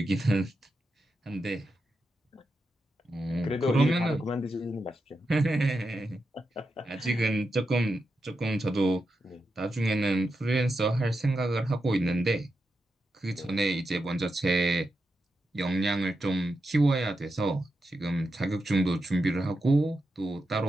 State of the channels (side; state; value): both; normal; correlation 0.87